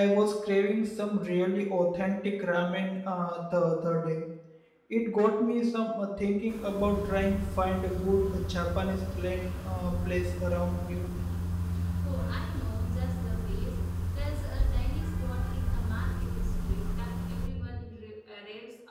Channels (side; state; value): both; identical; correlation 1.00